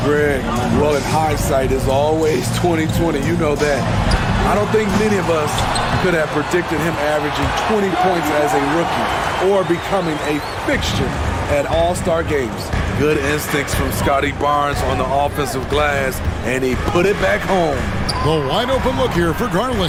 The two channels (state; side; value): identical; both; correlation 1.00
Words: Greg, well, in hindsight is always 2020. You know that. I don't think many of us could have predicted him averaging 20 points as a rookie or becoming a fixture at all-star games. Good instincts from Scotty Barnes on the offensive glass, and he put it back home. The wide open look here for